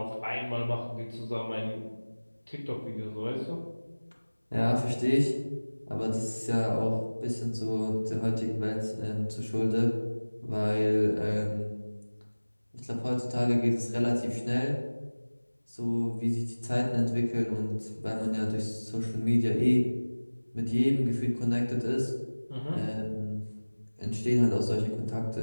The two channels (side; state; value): both; inverted; correlation -1.00